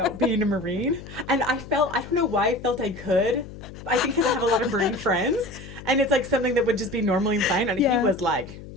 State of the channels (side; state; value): left; noise; hum, 14 dB below the sound